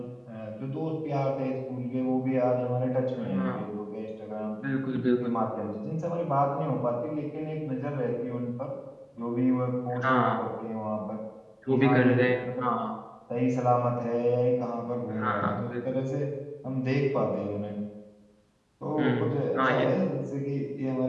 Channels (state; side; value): identical; both; correlation 1.00